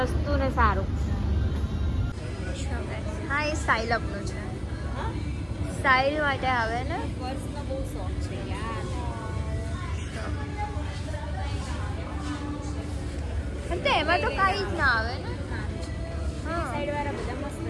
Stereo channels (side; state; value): both; identical; correlation 1.00